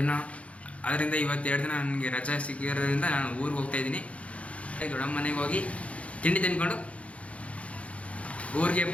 ಅದರಿಂದ ಇವತ್ತು 2 ದಿನ ನನಗೆ ರಜೆ ಸಿಕ್ಕಿರೋದ್ರಿಂದ ನಾನು ಊರಿಗೆ ಹೋಗ್ತಾಯಿದ್ದೀನಿ. ದೊಡ್ಡಮ್ಮ ಮನೆಗೆ ಹೋಗಿ ತಿಂಡಿ ತಿನ್ಕೊಂಡು ಊರಿಗೆ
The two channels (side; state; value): right; late; 0.064 ms